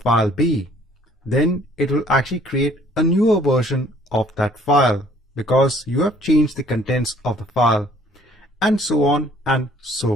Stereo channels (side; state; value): both; normal; correlation 0.58